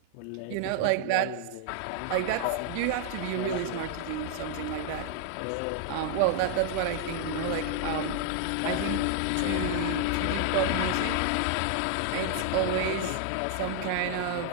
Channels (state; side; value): different; both; correlation 0.00